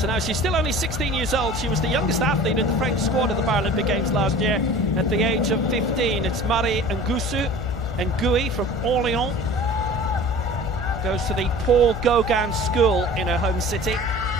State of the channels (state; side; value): noise; left; hum, 6 dB below the sound